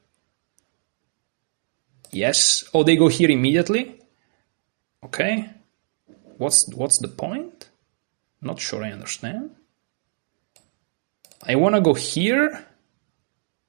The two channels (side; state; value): left; silent; digital silence